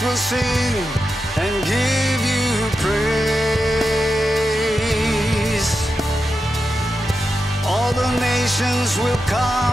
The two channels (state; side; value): normal; both; correlation 0.89